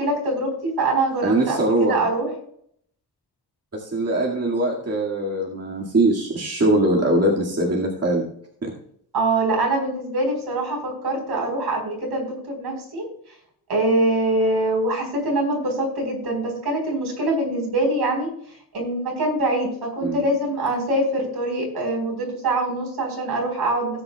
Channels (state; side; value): normal; both; correlation 0.12